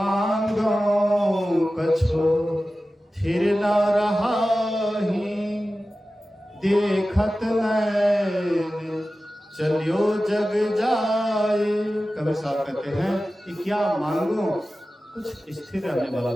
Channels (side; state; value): both; normal; correlation 0.95